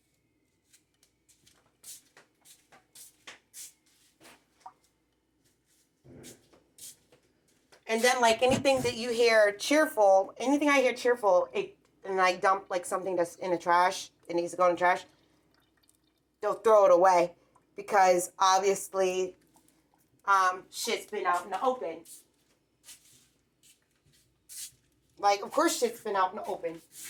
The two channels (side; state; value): both; identical; correlation 1.00